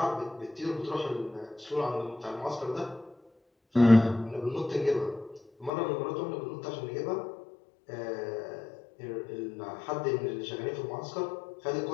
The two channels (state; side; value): drops out; right; at 5.7 s